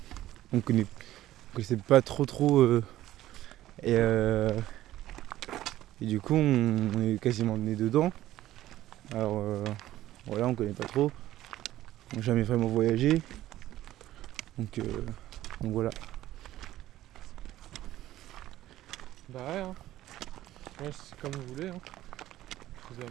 on connaissait pas trop et du coup on est quasiment né dedans. Alors voilà, on connaît pas trop, on n'a jamais vraiment voyagé, donc voilà. Bah ouais, hein. Ouais, c'est comme vous voulez. Hein. Je vous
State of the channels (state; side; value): quieter; left; 14.3 dB